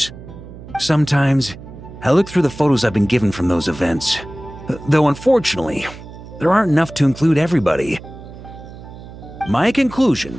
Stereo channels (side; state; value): right; noise; hum, 15 dB below the sound